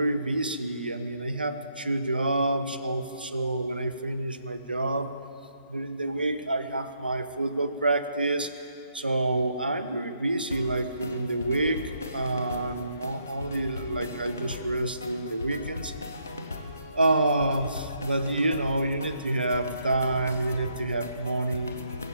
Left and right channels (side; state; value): both; inverted; correlation -0.75